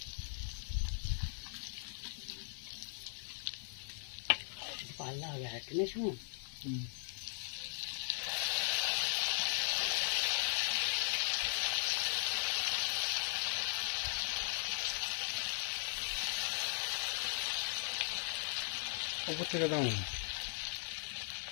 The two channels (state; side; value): silent; right; 52 dB below the other